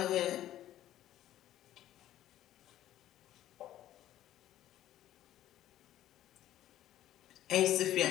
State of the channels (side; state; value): right; quieter; 13.1 dB